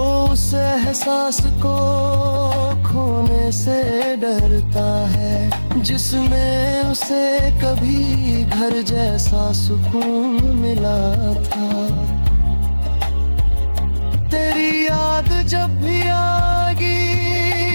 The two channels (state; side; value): inverted; both; correlation -1.00